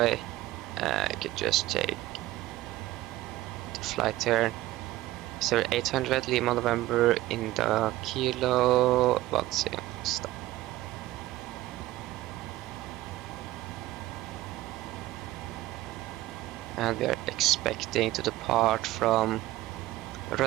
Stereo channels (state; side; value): quieter; left; 16.4 dB